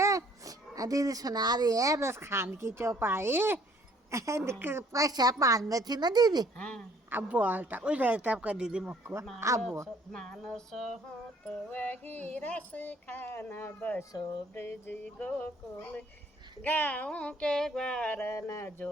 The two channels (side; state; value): both; normal; correlation 0.60